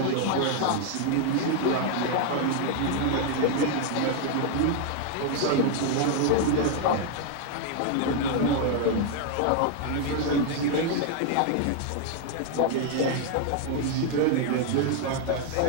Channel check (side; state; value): both; different; correlation 0.00